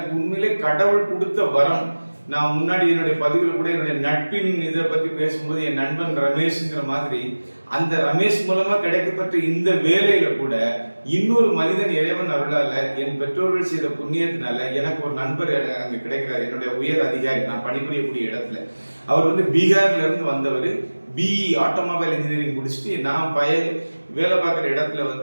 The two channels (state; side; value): inverted; both; correlation -1.00